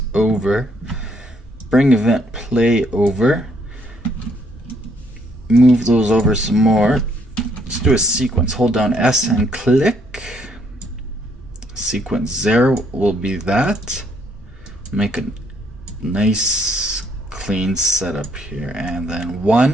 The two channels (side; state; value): both; normal; correlation 0.68